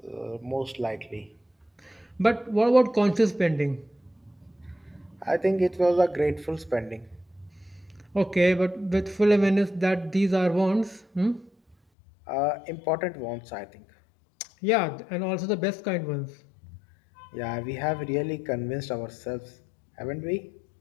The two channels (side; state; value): right; drops out; at 11.8 s